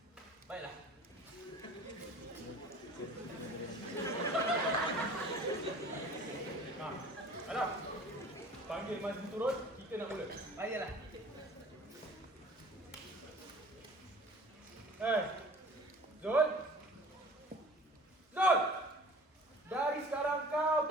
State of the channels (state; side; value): normal; both; correlation 0.46